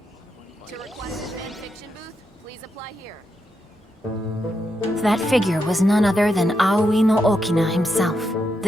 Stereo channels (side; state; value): both; normal; correlation 0.83